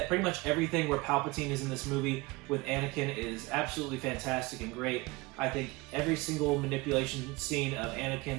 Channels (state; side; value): quieter; left; 22.9 dB